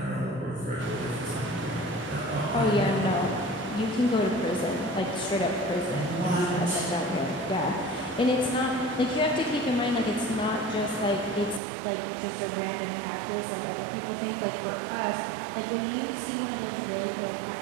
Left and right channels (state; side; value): drops out; left; at 11.6 s